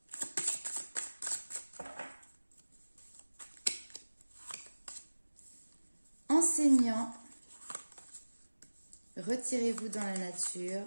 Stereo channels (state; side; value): inverted; both; correlation -1.00